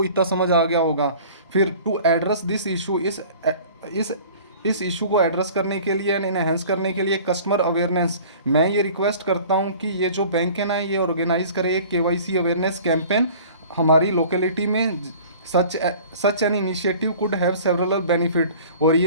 इतना समझ आ गया होगा। फिर टू एड्रेस दिस इशू, इस इस इशू को एड्रेस करने के लिए एंड इनहेंस करने के लिए कस्टमर अवेयरनेस, मैं ये रिक्वेस्ट करता हूँ कि ये जो बैंक है ना, ये ऑर्गेनाइज करे एक केवाईसी अवेयरनेस कैंपेन हमारी लोकेलिटी में। Such such an initiative could have several benefit, और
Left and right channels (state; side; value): inverted; both; correlation -0.46